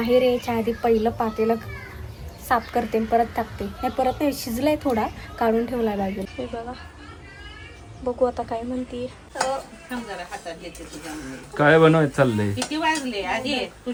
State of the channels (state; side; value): identical; both; correlation 1.00